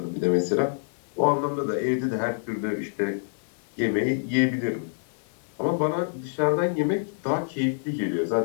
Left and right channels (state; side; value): silent; right; digital silence